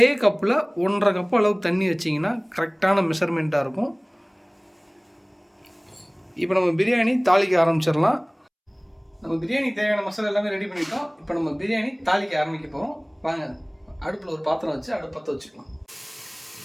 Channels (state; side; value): identical; both; correlation 1.00